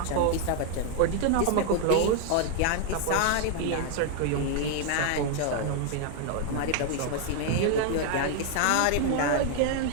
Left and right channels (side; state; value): both; different; correlation 0.00